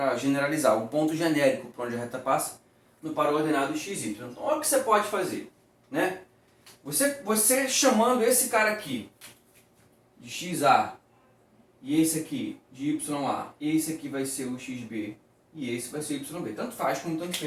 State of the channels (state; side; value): identical; both; correlation 1.00